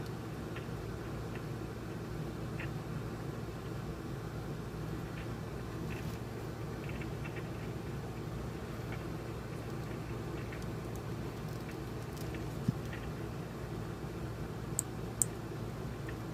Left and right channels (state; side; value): identical; both; correlation 1.00